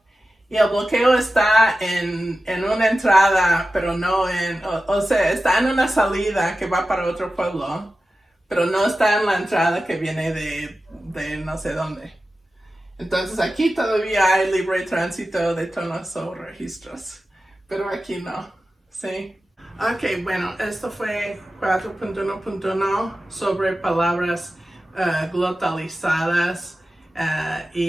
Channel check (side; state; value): both; normal; correlation 0.94